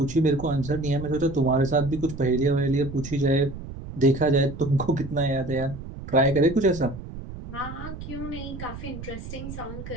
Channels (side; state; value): right; noise; rumble, 11 dB below the sound